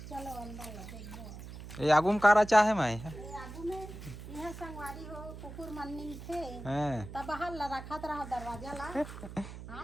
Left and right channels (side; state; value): right; noise; hum, 12 dB below the sound